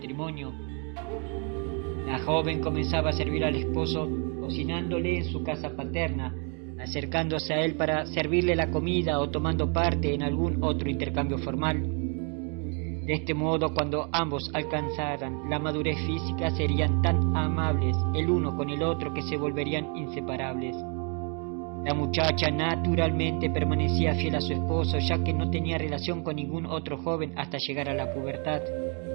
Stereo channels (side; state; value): left; quieter; 37.5 dB